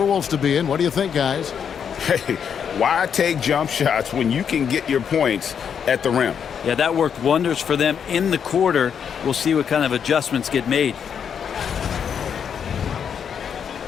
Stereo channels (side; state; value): right; quieter; 7.6 dB